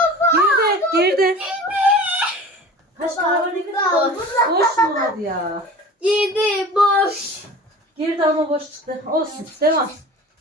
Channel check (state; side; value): normal; both; correlation 0.39